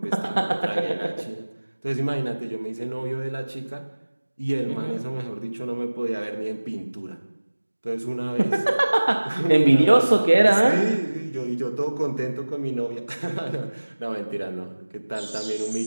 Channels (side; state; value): both; inverted; correlation -1.00